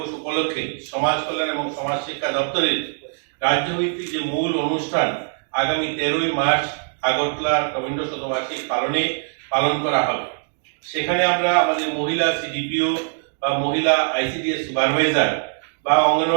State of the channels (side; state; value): left; silent; digital silence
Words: উপলক্ষে সমাজ কল্যাণ এবং সমাজ শিক্ষা দপ্তরের রাজ্যভিত্তিক যে মূল অনুষ্ঠান আগামী 13ই মার্চ আগরতলা রবীন্দ্র শতবার্ষিকী পালন করা হবে। সেখানে আমরা আমাদের মহিলা সিডিপিও বা মহিলা আইসিডিএস সুপারভাইজার বা